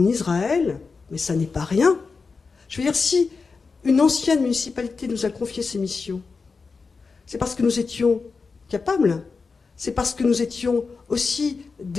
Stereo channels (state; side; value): quieter; right; 4.6 dB